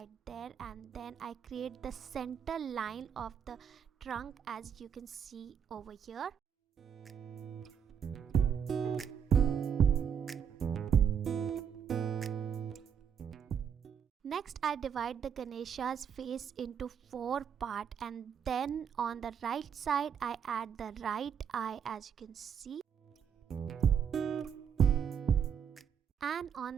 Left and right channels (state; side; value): quieter; left; 8.0 dB